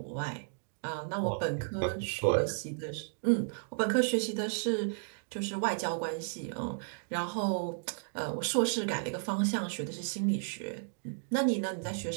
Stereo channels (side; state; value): left; silent; digital silence